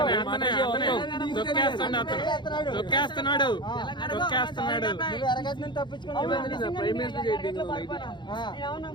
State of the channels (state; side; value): late; right; 0.22 ms